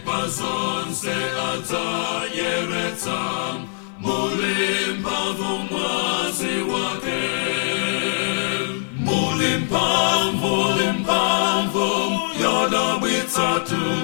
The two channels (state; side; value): silent; right; 56 dB below the other